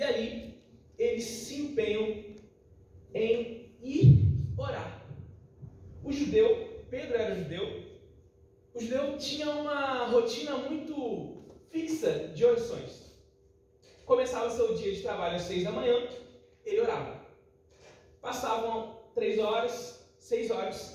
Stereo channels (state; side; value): identical; both; correlation 1.00